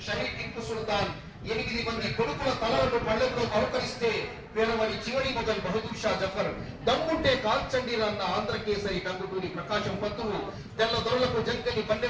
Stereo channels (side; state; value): both; identical; correlation 1.00